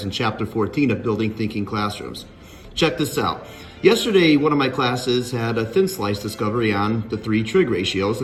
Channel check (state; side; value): identical; both; correlation 1.00